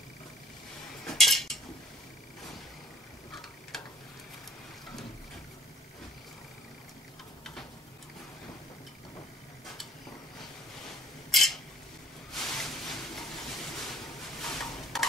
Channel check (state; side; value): normal; both; correlation 0.60